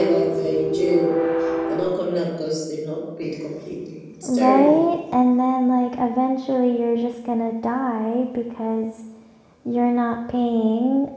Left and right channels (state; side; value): identical; both; correlation 1.00